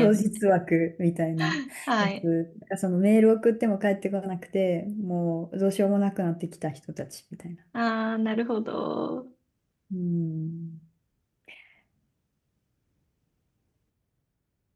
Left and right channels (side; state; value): both; identical; correlation 1.00